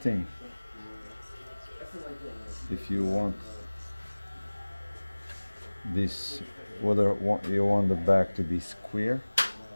If you want this, whether you want the back to be square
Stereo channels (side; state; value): both; inverted; correlation -1.00